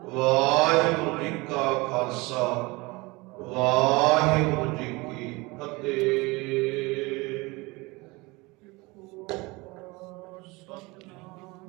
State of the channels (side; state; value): left; quieter; 24.0 dB